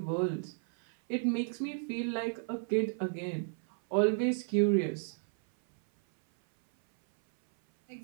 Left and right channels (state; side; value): silent; left; 56 dB below the other